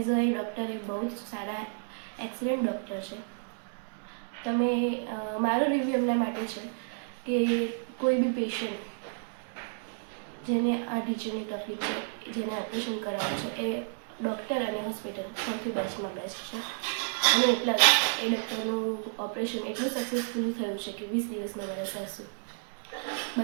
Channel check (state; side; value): silent; left; digital silence